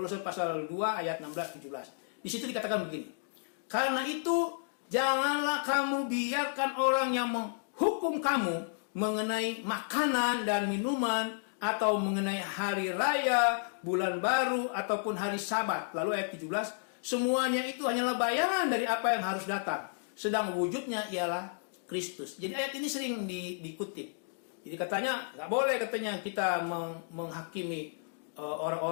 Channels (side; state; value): right; silent; digital silence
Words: pasal 2 ayat 16 17. Di situ dikatakan begini. Karena itu janganlah kamu biarkan orang yang menghukum kamu mengenai makanan dan minuman, atau mengenai hari raya, bulan baru, ataupun hari Sabat. Lalu ayat 17, semuanya itu hanyalah bayangan dari apa yang harus datang, sedang wujudnya ialah Kristus. Jadi ayat ini sering dikutip. Jadi katanya nggak boleh katanya kita menghakimi